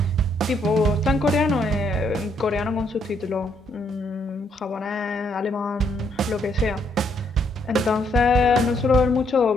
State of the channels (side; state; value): both; normal; correlation 0.72